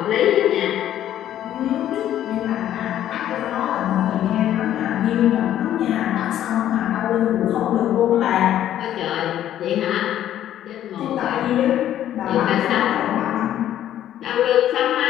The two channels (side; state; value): right; quieter; 11.6 dB